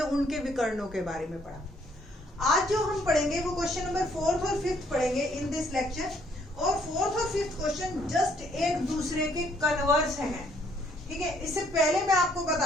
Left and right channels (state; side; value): normal; both; correlation 0.67